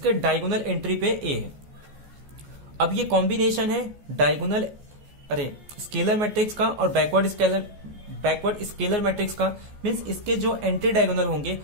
diagonal entry पे A है. अब ये combination है diagonal scalar matrix का और बैकवर्ड स्केलर मैट्रिक्स का. मींस इसके जो एंटी डायगोनल होंगे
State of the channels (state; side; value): late; left; 14 ms